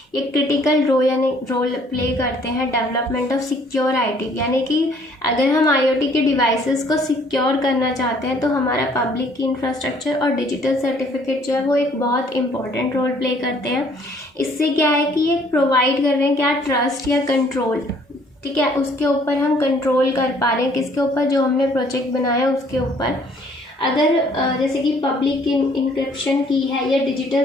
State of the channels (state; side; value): normal; both; correlation 0.61